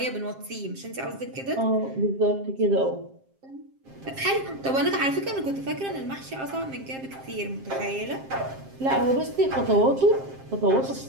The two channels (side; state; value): left; late; 7.5 ms